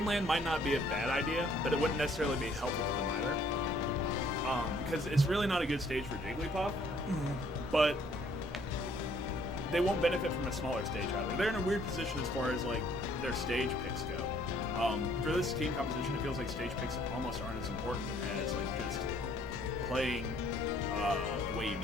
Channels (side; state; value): both; normal; correlation 0.62